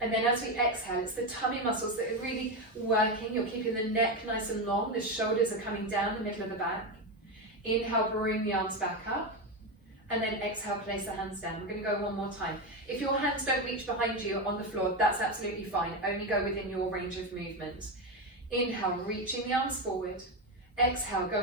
And then as we exhale, it's the tummy muscles that are really working. You're keeping the neck nice and long. The shoulders are coming down the middle of the back. Inhale, bring the arms back up. And then exhale, place the hands down. We're going to go 1 more time. If your hands don't reach behind you on the floor, that's absolutely fine. Only go within your range of movement. Inhale, reaching the arms forward. Exhale,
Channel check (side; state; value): both; normal; correlation 0.13